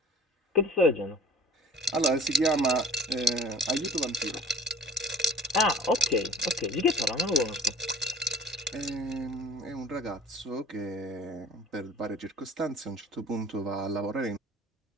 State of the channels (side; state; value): both; normal; correlation 0.46